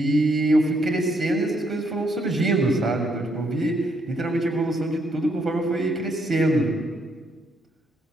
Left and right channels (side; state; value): both; normal; correlation 0.73